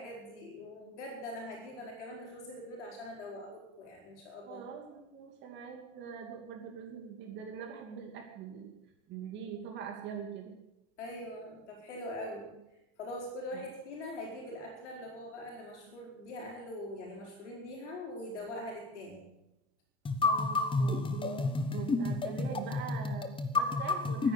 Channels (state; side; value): normal; both; correlation 0.35